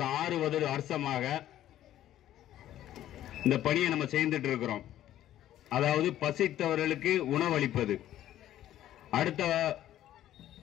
6 வருஷமாக இந்த பணியை நம்ம செய்துட்டு இருக்கிறோம். அதாவது பசித்தவர்களுக்கு உணவளிப்பது, அடுத்த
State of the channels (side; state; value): right; quieter; 12.6 dB